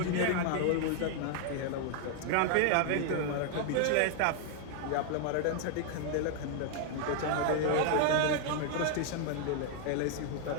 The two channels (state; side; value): different; both; correlation 0.00